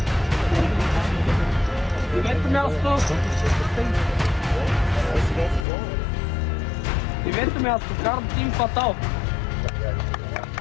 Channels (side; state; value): right; drops out; at 5.7 s